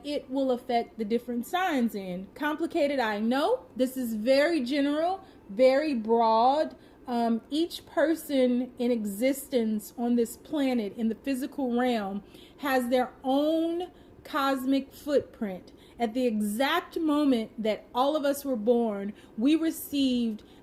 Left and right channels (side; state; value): both; identical; correlation 1.00